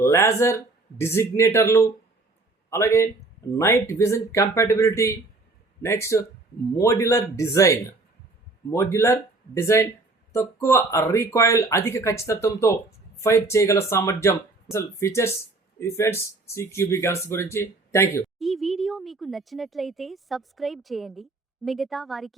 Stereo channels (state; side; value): quieter; left; 3.3 dB